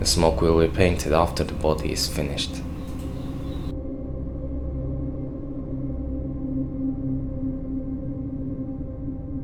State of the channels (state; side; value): identical; both; correlation 1.00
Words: smoke will be painted after the body is finished.